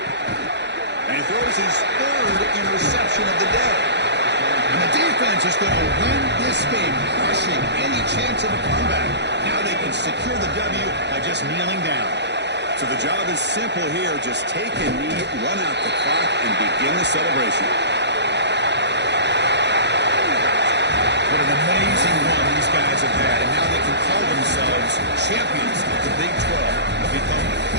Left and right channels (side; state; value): left; late; 0.50 ms